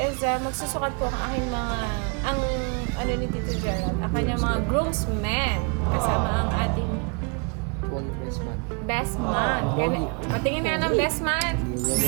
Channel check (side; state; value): left; quieter; 34.6 dB